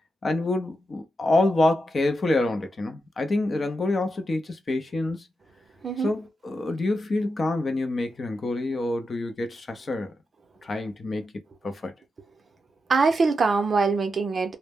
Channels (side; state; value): both; normal; correlation 0.87